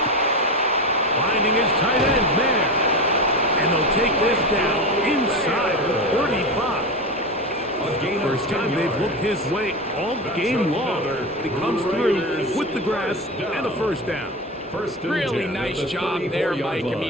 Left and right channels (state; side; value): normal; both; correlation 0.22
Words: Finding his tight end man. And they'll take this down inside the 35. First time they've looked his way all game long. He comes through with the grasp and a first down. Really nice job there, Mike. I